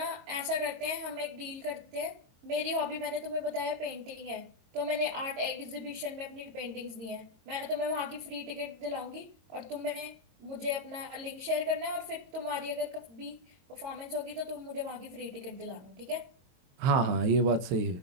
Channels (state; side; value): late; left; 22 ms